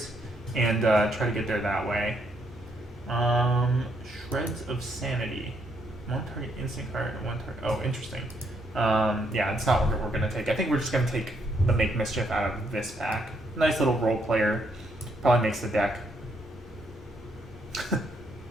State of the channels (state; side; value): normal; both; correlation 0.74